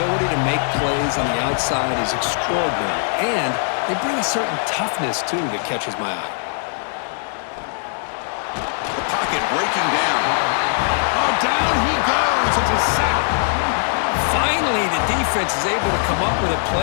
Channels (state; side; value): silent; right; 62 dB below the other